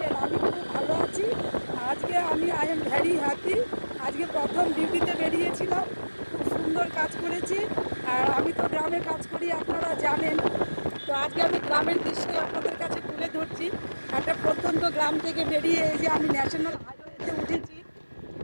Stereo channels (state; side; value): inverted; both; correlation -1.00